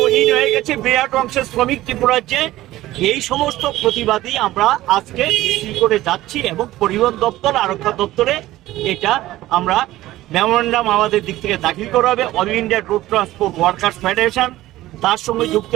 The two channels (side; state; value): left; quieter; 15.9 dB